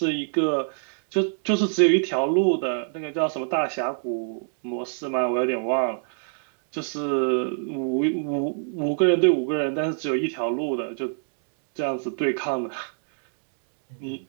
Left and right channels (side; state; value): left; silent; digital silence